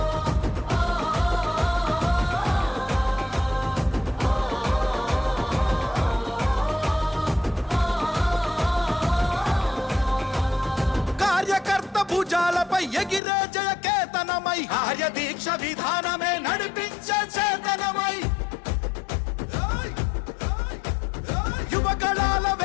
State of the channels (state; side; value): drops out; right; at 13.2 s